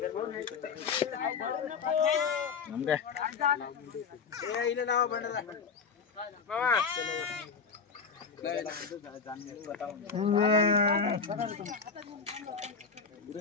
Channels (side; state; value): right; quieter; 5.5 dB